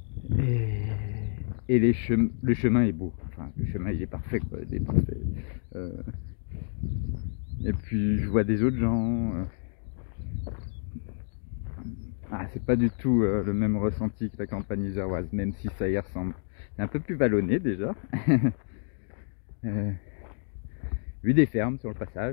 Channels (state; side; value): silent; right; 59 dB below the other